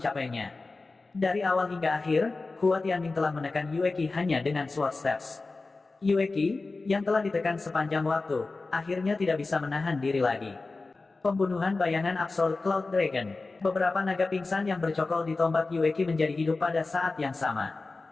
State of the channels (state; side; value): quieter; right; 3.6 dB